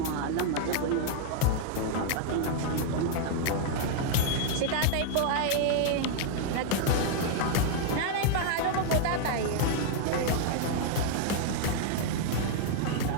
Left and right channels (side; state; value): both; different; correlation 0.00